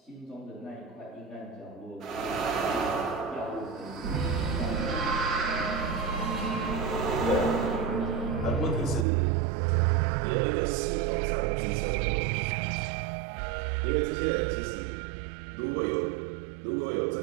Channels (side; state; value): left; drops out; at 9.1 s